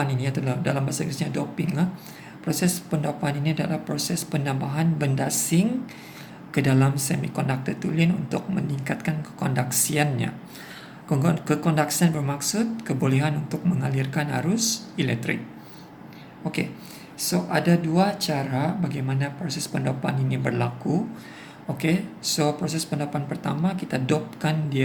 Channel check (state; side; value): identical; both; correlation 1.00